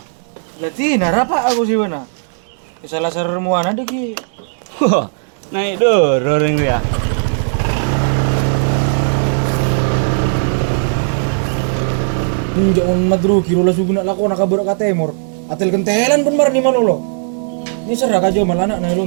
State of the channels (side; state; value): left; silent; digital silence